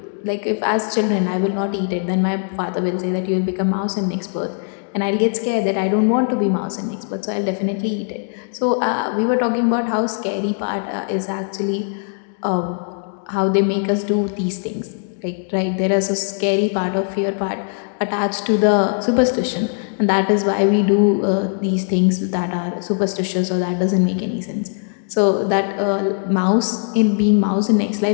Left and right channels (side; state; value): right; silent; 56 dB below the other